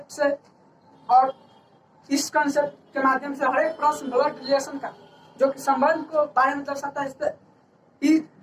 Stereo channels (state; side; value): identical; both; correlation 1.00